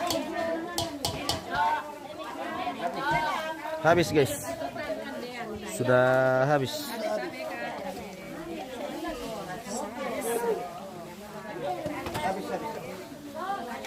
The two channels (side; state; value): both; identical; correlation 1.00